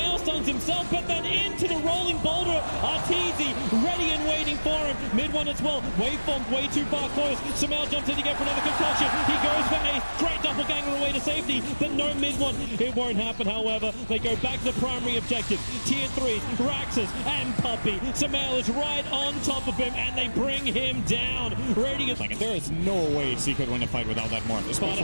stuns himself, but then into the rolling boulder. Arteezy ready and waiting for him. Mid one as well. Waveform way too far close. Samael jumps in again for another concoction. He goes for Ace. Great doppelganger away to safety, but no mid one. It won't happen, however. They go back to the primary objective. Tier 3, Raxus and Puppey. Samael is right on top of him, and they bring him down. Radiant. There is no way Secret win a fight without that morph. Sparta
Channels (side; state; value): both; inverted; correlation -1.00